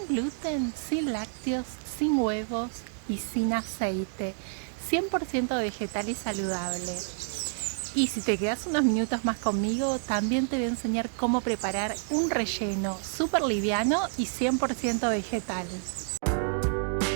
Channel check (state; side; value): silent; left; digital silence